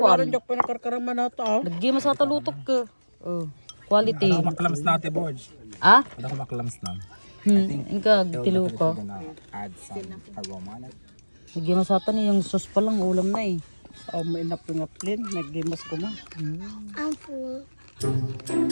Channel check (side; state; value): both; inverted; correlation -1.00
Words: Kwan. jok pinakarkaraman na ito. Nagima sa talutok ka. Oh. Quality. Maklams na ate Borge. Ah? Ano ko maklams na? Inka, tilo ko. Gonna add some aroma on it. Nagima sa ni yung sauce pa lang ulam na eh. Oh, may napingaplin. Naggimas ko ma. I'm full.